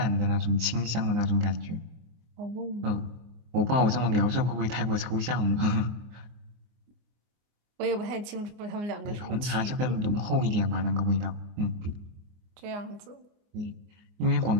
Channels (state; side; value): late; left; 24 ms